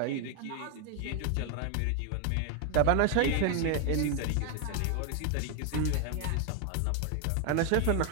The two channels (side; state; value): both; different; correlation 0.01